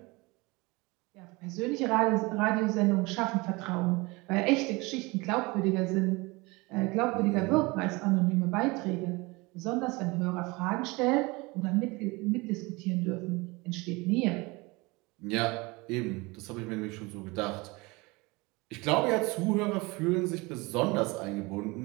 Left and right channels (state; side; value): quieter; left; 24.5 dB